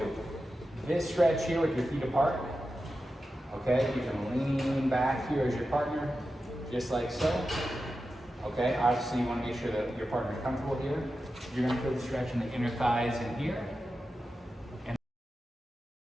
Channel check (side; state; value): both; normal; correlation 0.91